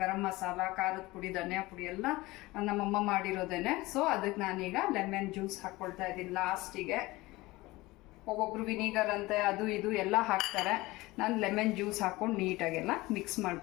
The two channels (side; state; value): right; quieter; 20.3 dB